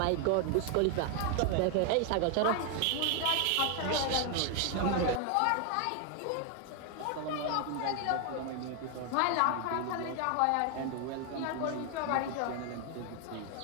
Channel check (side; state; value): both; different; correlation 0.01